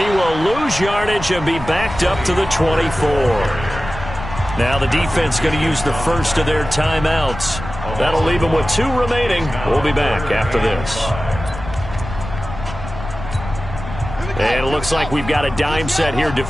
will lose yardage and be backed up to the 24. Now the defense going to use the first of their timeouts. That'll leave them with 2 remaining. We'll be back after this. And it looks like we've got a dime set here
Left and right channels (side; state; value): left; noise; rumble, 10 dB below the sound